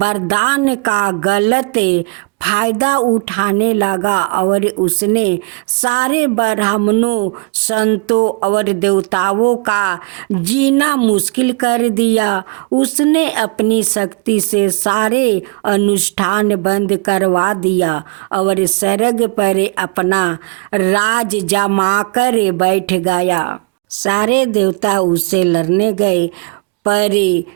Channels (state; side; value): quieter; left; 29.2 dB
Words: का गलत फायदा उठाने लगा और उसने सारे ब्राह्मणों, संतों और देवताओं का जीना मुश्किल कर दिया। उसने अपनी शक्ति से सारे अनुष्ठान बंद करवा दिया और स्वर्ग पर अपना राज जमाकर बैठ गया। सारे देवता उससे लड़ने गए पर